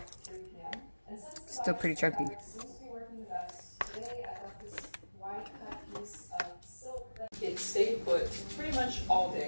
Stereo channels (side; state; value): both; inverted; correlation -1.00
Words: Still pretty chunky. It stayed put pretty much all